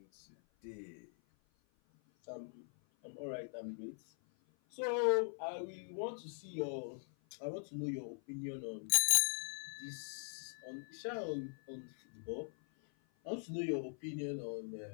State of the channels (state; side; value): silent; right; 50 dB below the other